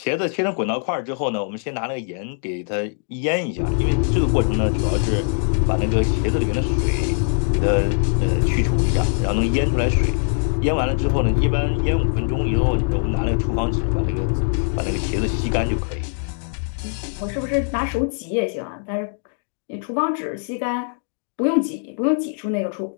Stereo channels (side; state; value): right; silent; digital silence